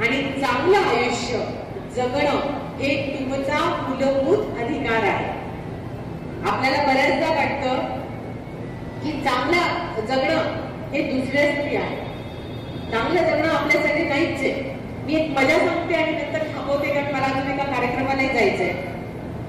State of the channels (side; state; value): both; identical; correlation 1.00